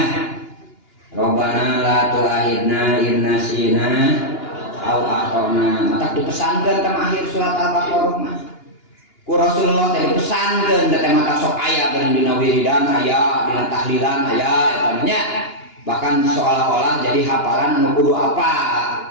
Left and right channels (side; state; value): right; late; 2.9 ms